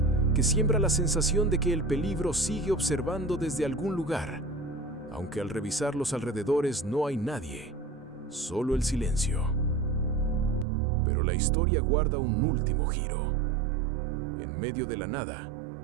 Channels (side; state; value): left; drops out; at 10.7 s